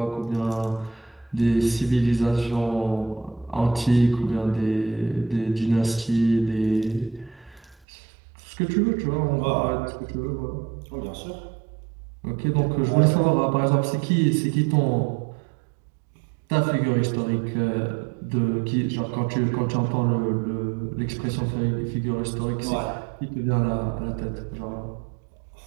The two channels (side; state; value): left; drops out; at 7.8 s